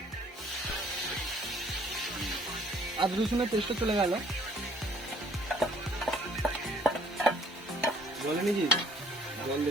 আদা রসুনের পেস্টও চলে গেল। বলে নিজি জল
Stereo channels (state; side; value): normal; both; correlation 0.58